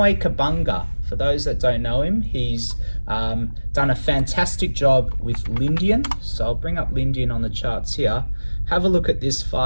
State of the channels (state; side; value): inverted; both; correlation -1.00